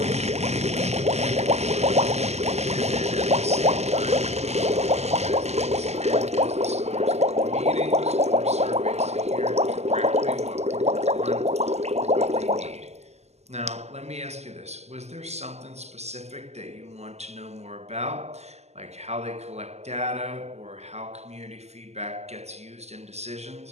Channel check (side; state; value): left; late; 0.32 ms